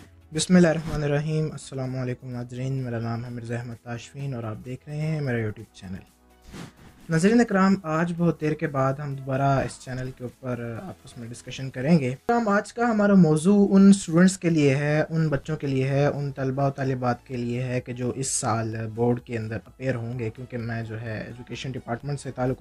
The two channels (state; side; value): identical; both; correlation 1.00